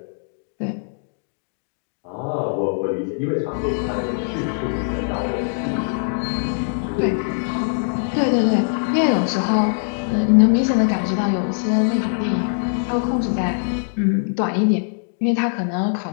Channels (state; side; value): silent; right; digital silence